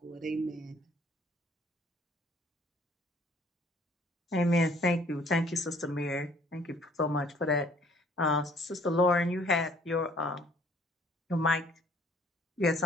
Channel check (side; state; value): both; normal; correlation 0.58